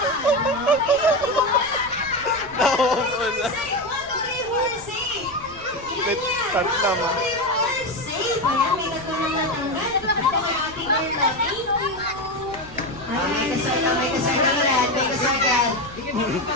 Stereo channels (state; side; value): noise; right; rumble, 20 dB below the sound